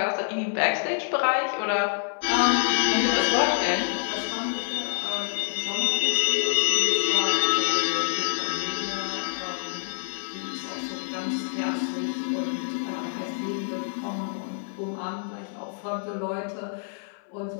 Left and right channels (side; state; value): right; silent; 59 dB below the other